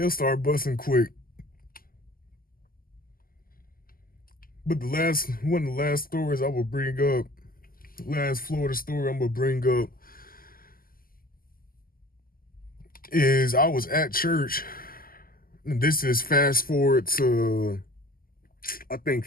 start busting quick. But one of the last stories I will bring up, last Florida story I'm gonna bring up is I was at church, and this is fast forward to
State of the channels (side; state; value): right; late; 0.42 ms